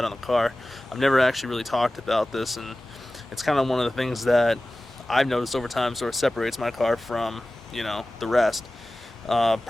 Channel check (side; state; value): both; normal; correlation 0.96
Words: on the car. I've never actually really talked about this, and it's kind of one of the things that I've noticed over time sort of separates my car from the rest.